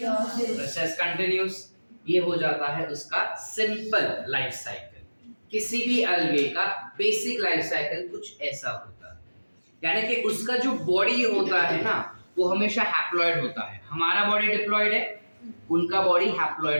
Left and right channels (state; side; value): inverted; both; correlation -1.00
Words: Process continuous. ये हो जाता है उसका सिंपल लाइफ साइकिल। किसी भी अलगे का बेसिक लाइफ साइकिल कुछ ऐसा होता है, यानी कि उसका जो बॉडी होता है ना वो हमेशा हैप्लॉइड होता है। हमारा बॉडी डिप्लॉइड है, उनका बॉडी